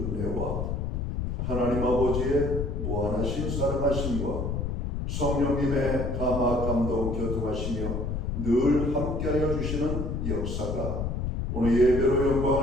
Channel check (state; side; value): noise; left; rumble, 2 dB below the sound